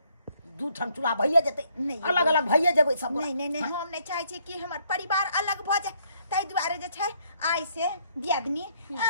दू ठन चूल्हा भइए जेतै, अलग अलग भइए जेबै सब गोटा। नहीं हम नहीं चाहे छी कि हमर परिवार अलग भ जाए। ताहि दुआरे जे छै आइ से दियादनी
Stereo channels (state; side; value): inverted; both; correlation -0.68